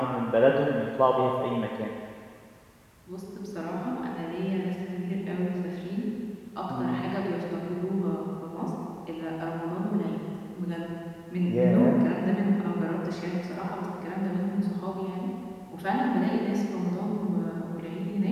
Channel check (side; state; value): both; identical; correlation 1.00